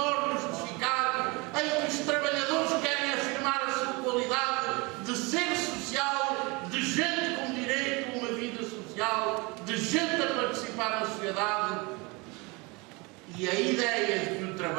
de Chicago, em que os trabalhadores querem afirmar a sua qualidade de ser social, de gente com direito a uma vida social, de gente a participar na sociedade. E a ideia de que o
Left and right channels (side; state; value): left; quieter; 26.9 dB